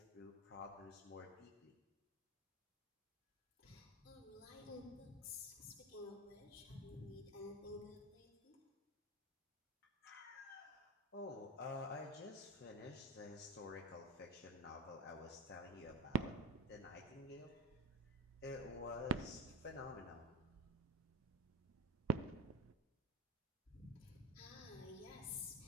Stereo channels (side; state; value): both; normal; correlation 0.22